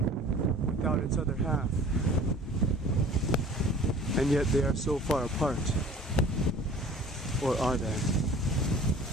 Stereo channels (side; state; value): both; normal; correlation 0.46